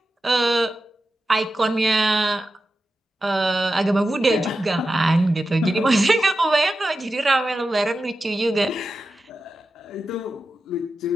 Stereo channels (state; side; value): normal; both; correlation 0.91